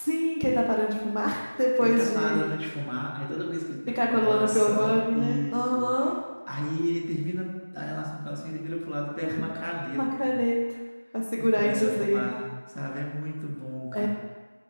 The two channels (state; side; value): inverted; both; correlation -1.00